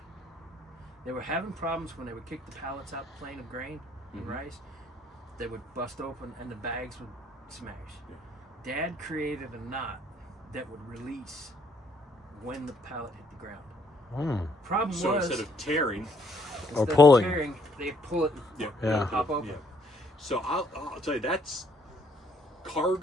They were having problems when they would kick the pallets out the plane of grain and rice. They would bust open and the bags would smash. Yeah. Dad created a knot that would release when the pallet hit the ground. Problem So was, instead of tearing, Or instead of pulling. tearing, they pull it and Yeah. pop open. yeah. So I'll tell you, that's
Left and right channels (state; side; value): normal; both; correlation 0.67